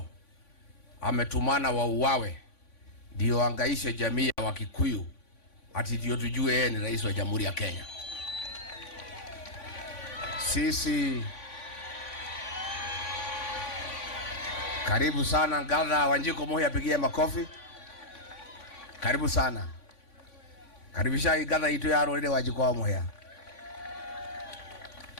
ametumana wauawe ndio angaishe jamii ya Wakikuyu ati ndio tujue yeye ni rais wa Jamhuri ya Kenya. Sisi karibu sana Gatha Wanjiko Moi, apigie makofi. Karibu sana. Karibisha Gatha itu ya Roride Wanjiko Moi.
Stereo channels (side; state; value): right; late; 3.5 ms